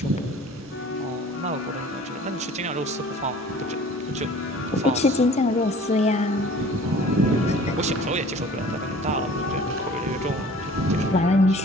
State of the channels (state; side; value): normal; both; correlation 0.47